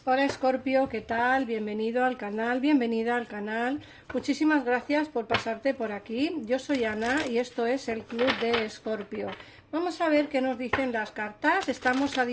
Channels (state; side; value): identical; both; correlation 1.00